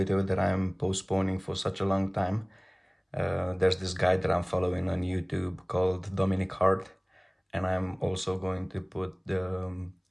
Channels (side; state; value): both; identical; correlation 1.00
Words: that I'm postponing for such a long time. There's this guy that I'm following on YouTube called Dominic Hart, and I'm also going to put the